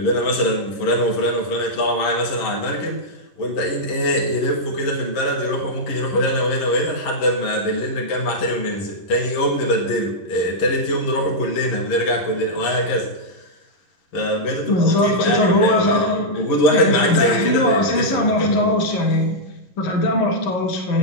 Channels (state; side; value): late; right; 11 ms